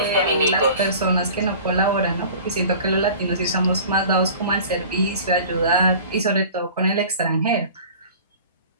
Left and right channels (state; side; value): inverted; both; correlation -0.43